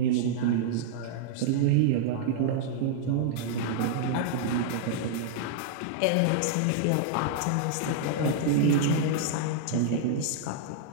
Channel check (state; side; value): different; both; correlation -0.01